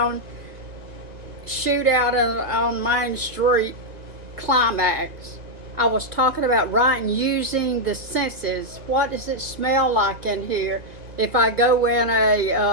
shootout on Main Street climax. I was talking about writing using the senses. What does it smell like in here? If I go in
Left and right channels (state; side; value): late; left; 1.8 ms